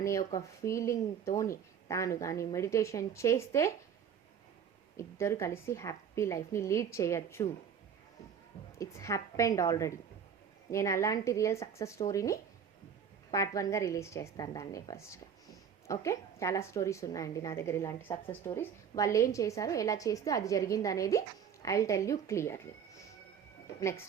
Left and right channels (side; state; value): left; quieter; 7.6 dB